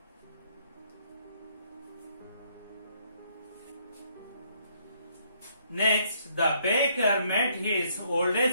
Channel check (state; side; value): inverted; both; correlation -0.69